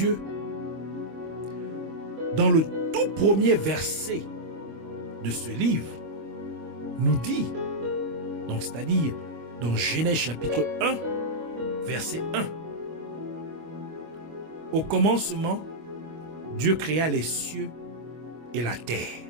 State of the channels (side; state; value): left; late; 25 ms